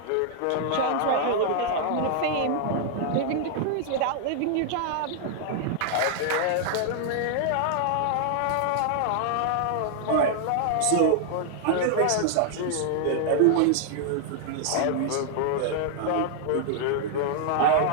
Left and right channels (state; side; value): different; both; correlation 0.00